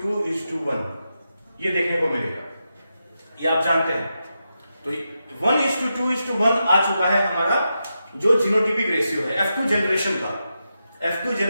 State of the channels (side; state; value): both; inverted; correlation -0.88